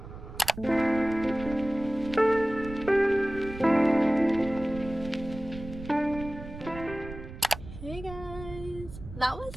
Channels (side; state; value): right; noise; rumble, 13 dB below the sound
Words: Hey guys, that was